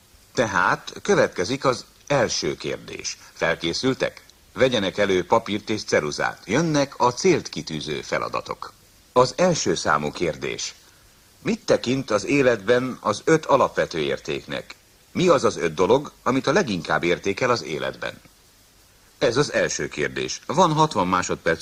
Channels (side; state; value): both; identical; correlation 1.00